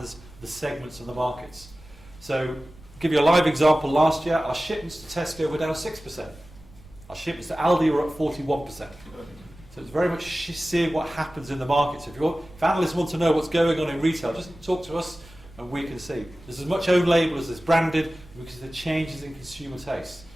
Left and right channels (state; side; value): noise; right; rumble, 22 dB below the sound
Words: the segments of the markets. So, to give you a live example, last year our shipments to Tesco were down 6%. Our shipments to Aldi were up 41%. So it's very much seeing what happens in the markets. If analysts want to know what's going on in retail, just talk to us and we can see. There's as much own label as there's branded because of the changes in consumer taste.